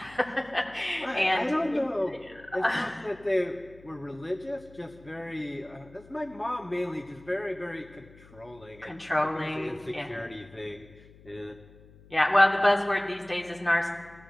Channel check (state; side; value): noise; left; hum, 23 dB below the sound